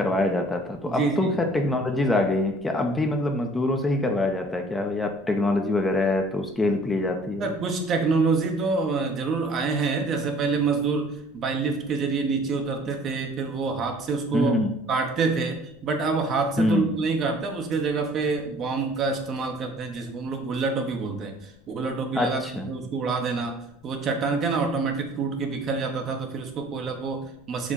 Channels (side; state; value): left; noise; rumble, 28 dB below the sound